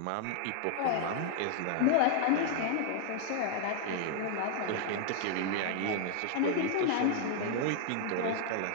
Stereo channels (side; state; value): both; different; correlation 0.00